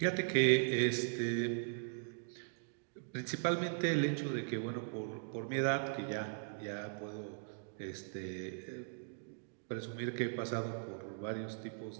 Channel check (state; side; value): silent; left; digital silence